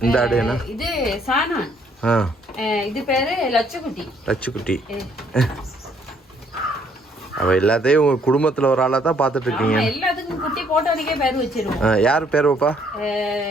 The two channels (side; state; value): both; normal; correlation 0.66